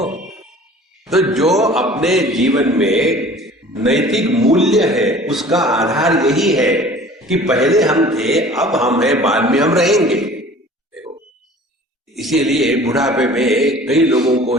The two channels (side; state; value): both; normal; correlation 0.46